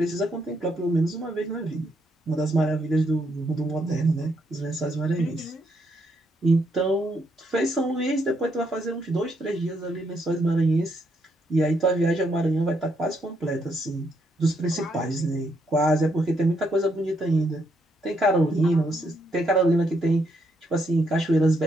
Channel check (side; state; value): both; normal; correlation 0.75